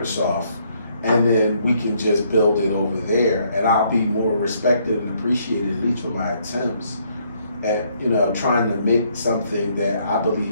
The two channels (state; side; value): inverted; both; correlation -0.69